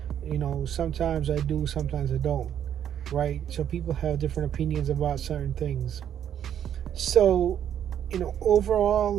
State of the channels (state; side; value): quieter; left; 9.7 dB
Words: sometimes I do, sometimes I don't, right? So people have different opinions about certain things. So